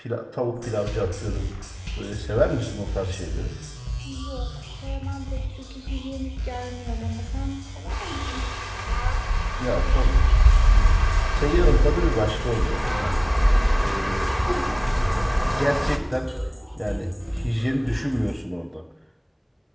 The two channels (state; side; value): identical; both; correlation 1.00